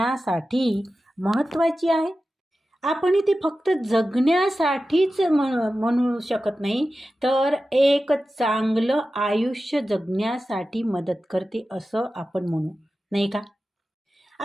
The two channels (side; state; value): both; normal; correlation 0.94